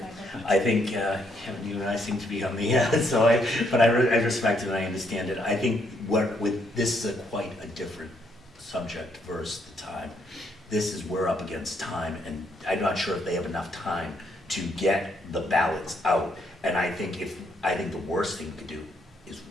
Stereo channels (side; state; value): both; normal; correlation 0.73